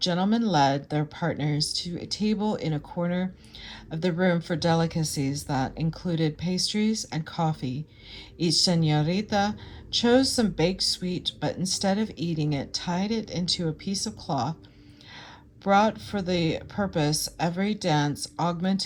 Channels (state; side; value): identical; both; correlation 1.00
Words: led their partners to a table in a corner of the room for delicacies that included pastries and coffee. Each señorita chose some baked sweet, but instead of eating it, tied it into a piece of cloth. Brought for the purpose, every dance